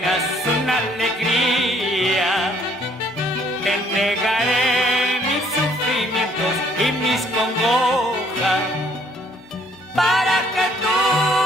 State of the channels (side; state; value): both; normal; correlation 0.63